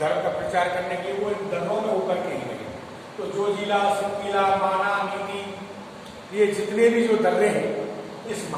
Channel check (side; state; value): both; identical; correlation 1.00